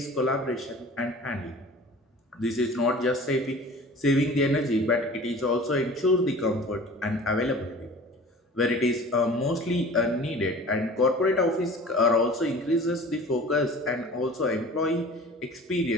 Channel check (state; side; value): normal; both; correlation 0.42